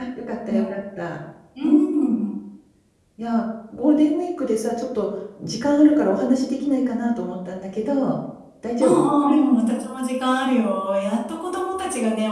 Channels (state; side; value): identical; both; correlation 1.00